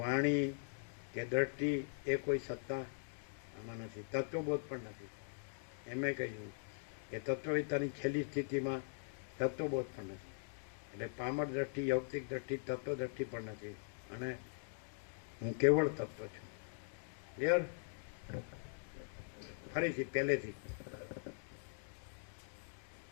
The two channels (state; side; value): silent; right; digital silence